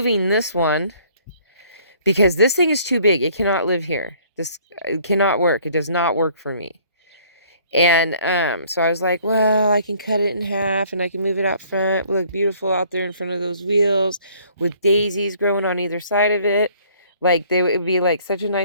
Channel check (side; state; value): both; inverted; correlation -0.58